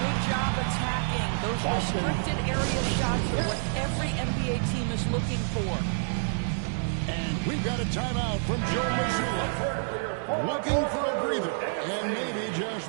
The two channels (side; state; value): left; silent; digital silence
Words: Good job attacking. Those restricted area shots are what every NBA team is looking for. And we've got a timeout from Joe Mazzulla. Looking for a breather. And maybe